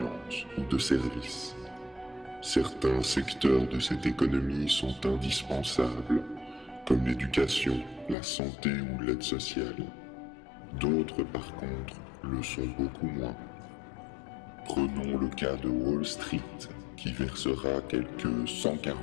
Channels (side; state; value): right; drops out; at 8.2 s